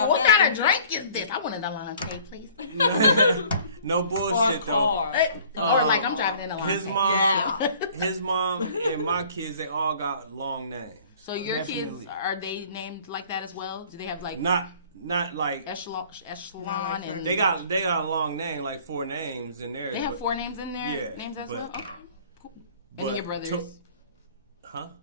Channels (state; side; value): inverted; both; correlation -0.52